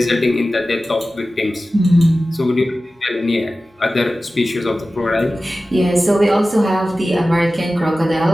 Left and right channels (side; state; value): both; normal; correlation 0.95